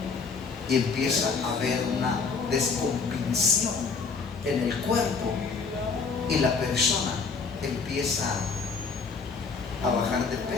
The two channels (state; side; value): quieter; right; 5.0 dB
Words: y empieza a haber una descompensación en el cuerpo y la persona empieza a bajar de